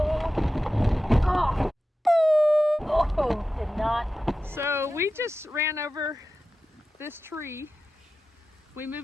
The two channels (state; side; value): normal; both; correlation 0.93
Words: Oh! Oh, did not. So we just ran over this tree. We